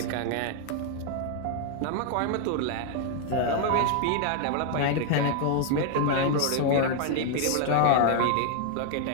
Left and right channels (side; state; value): both; different; correlation 0.00